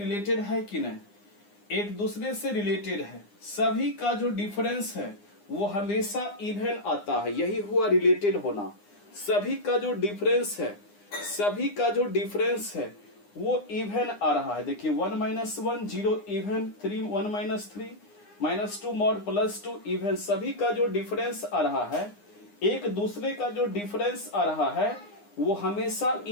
है कि नहीं? एक दूसरे से रिलेटेड है। सभी का जो डिफरेंस है वो हमेशा इवन आता है, यही हुआ रिलेटेड होना। सभी का जो डिफरेंस है, सभी का जो डिफरेंस है वो इवन आ रहा है। देखिए 1 minus 1 0 even, 1 minus 3 minus 2 mod plus 2 even. सभी का जो डिफरेंस आ रहा है, एक दूसरे का जो डिफरेंस आ रहा है वो हमेशा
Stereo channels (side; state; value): right; late; 9.8 ms